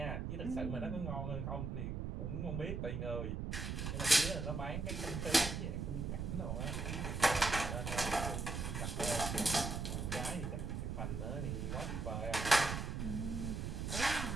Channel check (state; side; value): noise; right; rumble, 3 dB below the sound